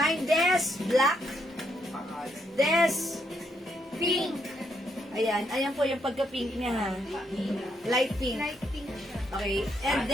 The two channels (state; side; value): normal; both; correlation 0.76